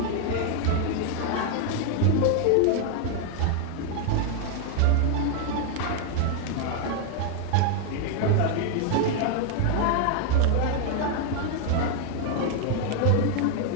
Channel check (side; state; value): both; different; correlation 0.00